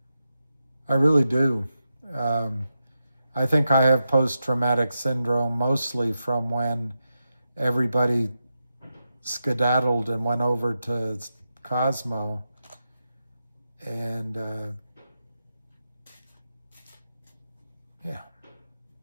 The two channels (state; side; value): inverted; both; correlation -0.88